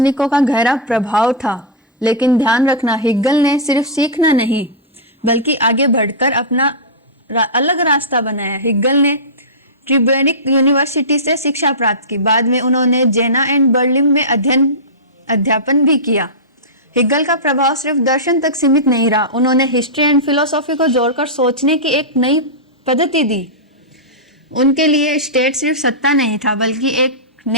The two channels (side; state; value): both; normal; correlation -0.14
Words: का गहरा प्रभाव था। लेकिन ध्यान रखना, हिगल ने सिर्फ सीखना नहीं बल्कि आगे बढ़कर अपना अलग रास्ता बनाया। हिगल ने ट्यूबिंग यूनिवर्सिटी से शिक्षा प्राप्त की। बाद में उन्होंने जेना एंड बर्लिन में अध्यापन भी किया। हिगल का प्रभाव सिर्फ दर्शन तक सीमित नहीं रहा। उन्होंने हिस्ट्री एंड फिलोसॉफी को जोड़कर सोचने की एक नई पद्धति दी। उनके लिए स्टेट सिर्फ सत्ता नहीं था बल्कि एक